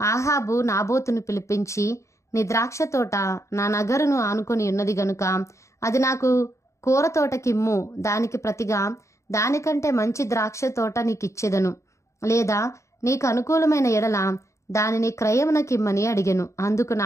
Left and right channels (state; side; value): late; right; 0.14 ms